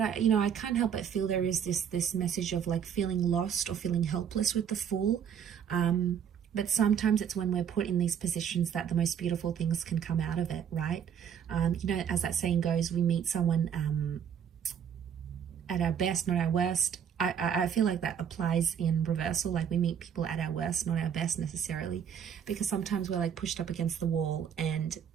I can't help but feel there is this message of like feeling lost or feeling helpless with the Fool. But sometimes it's when we're put in these positions that the most beautiful things can come out of it, right? As that saying goes, we meet someone at our best, not our worst. I feel like that applies in reversal. Like we meet people at our worst, not our best necessarily, because sometimes we're like pushed up against the wall, and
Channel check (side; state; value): left; quieter; 8.2 dB